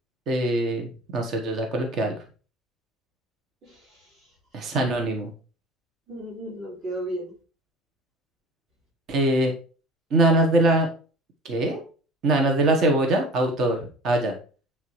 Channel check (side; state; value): both; normal; correlation 0.41